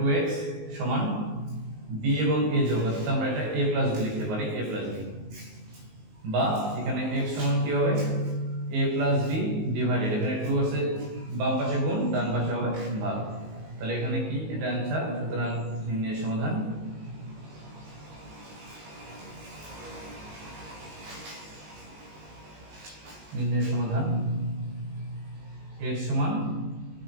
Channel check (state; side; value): late; left; 19 ms